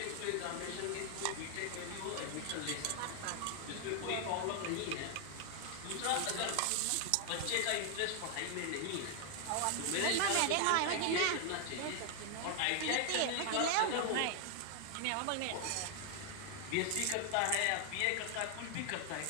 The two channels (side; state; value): both; different; correlation 0.00